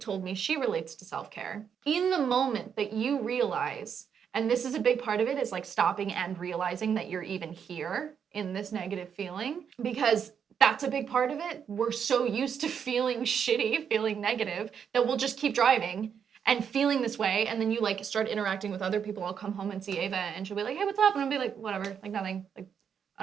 me she relates to self-care, in the moment that you realize, and this is a big part of it, is like stopping and realizing that you're even here in this negative feeling, because that's a big part of it. We're so used to feeling shitty, feeling negative, that we'll just keep driving and feeling this way, and then you like start interacting with other people. I'll come home and see Ava, and she'll be like, hey, what's up? And I'll be like, whatever, like nothing. Like,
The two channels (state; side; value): quieter; left; 7.5 dB